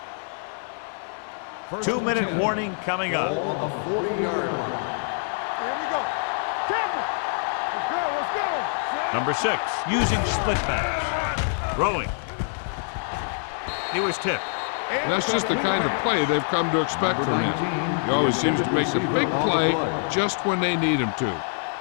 First 2-minute 10. warning coming up. Ball on the 40-yard line. Here we go. Tackle. Let's go. Let's go. Number 6 using split backs. Throwing. He was tipped. That's just the kind of play they've come to expect from him. He always seems to make the big play just when they need him to.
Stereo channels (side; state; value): right; silent; 59 dB below the other